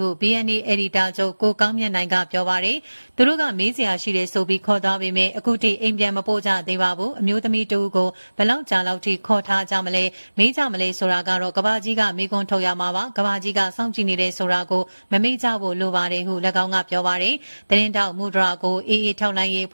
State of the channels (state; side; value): inverted; both; correlation -1.00